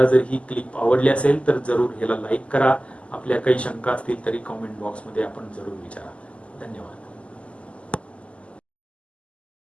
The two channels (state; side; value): late; right; 0.059 ms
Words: जर ही क्लिप आवडली असेल तर जरूर ह्याला लाईक करा. आपल्या काही शंका असतील तरी कॉमेंट बॉक्समध्ये आपण जरूर विचारा. धन्यवाद.